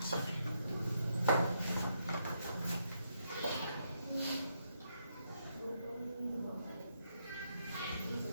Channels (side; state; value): both; inverted; correlation -0.78